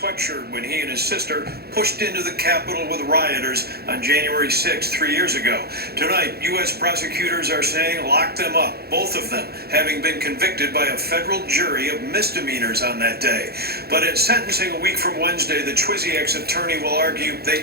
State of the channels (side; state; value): left; late; 0.46 ms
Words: ruptured when he and his sister pushed into the Capitol with rioters on January 6th, 3 years ago. Tonight, U.S. prosecutors are saying lock them up, both of them having been convicted by a federal jury of misdemeanors on that day. But at sentencing a week from Wednesday, the Chwiziak's attorney will argue they